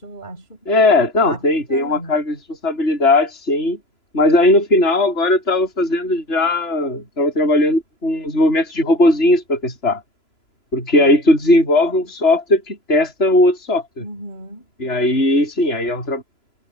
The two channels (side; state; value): right; late; 3.0 ms